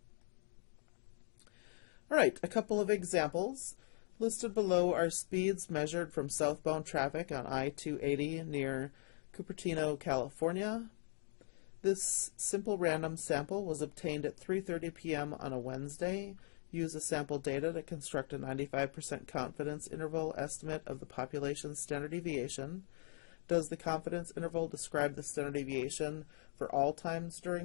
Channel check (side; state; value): right; silent; digital silence